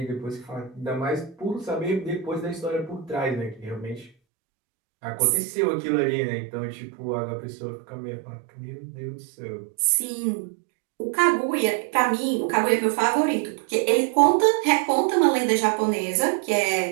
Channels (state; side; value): drops out; left; at 4.1 s